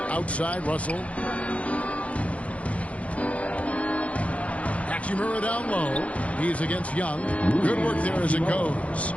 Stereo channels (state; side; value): late; right; 0.064 ms